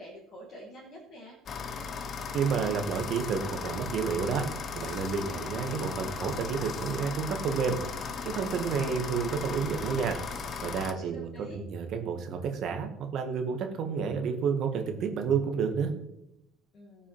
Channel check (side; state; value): left; quieter; 4.0 dB